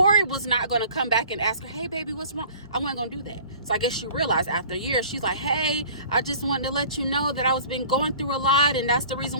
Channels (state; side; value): inverted; both; correlation -0.47